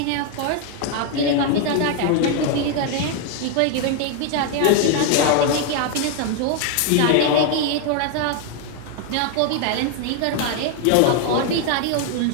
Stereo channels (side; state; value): both; different; correlation 0.01